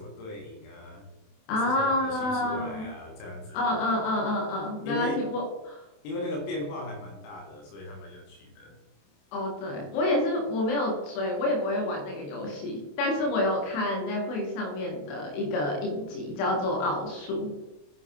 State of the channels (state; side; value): late; right; 27 ms